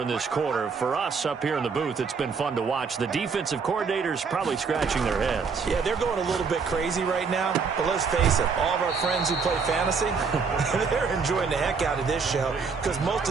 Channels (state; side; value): quieter; left; 5.3 dB